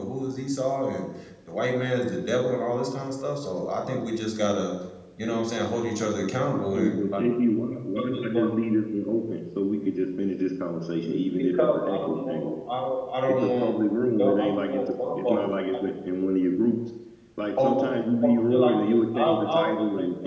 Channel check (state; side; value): identical; both; correlation 1.00